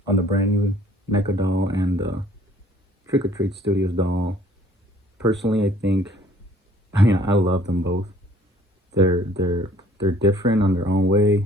the brand new NECA doll and the Trick or Treat Studios doll. Personally, I love them both. They're different on their own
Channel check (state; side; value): normal; both; correlation 0.56